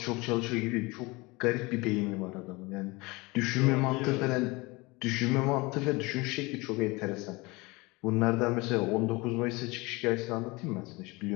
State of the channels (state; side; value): quieter; right; 24.3 dB